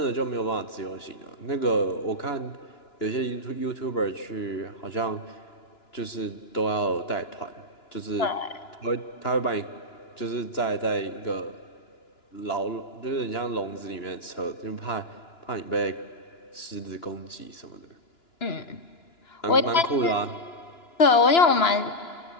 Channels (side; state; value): right; late; 2.9 ms